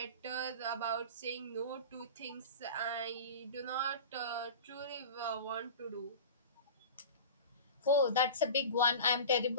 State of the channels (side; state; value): both; inverted; correlation -0.33